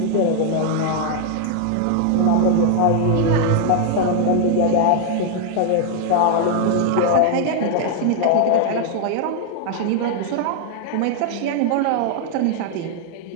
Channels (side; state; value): both; different; correlation 0.00